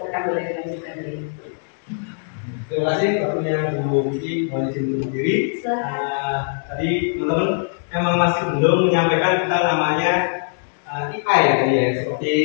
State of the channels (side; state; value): right; silent; 65 dB below the other